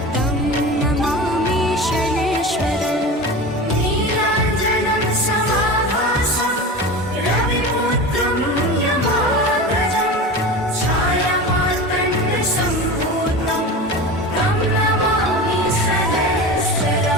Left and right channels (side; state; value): both; normal; correlation 0.29